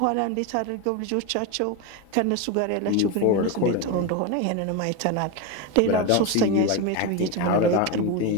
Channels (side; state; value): both; different; correlation 0.04